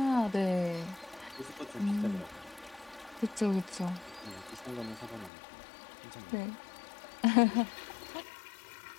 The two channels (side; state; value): right; drops out; at 5.3 s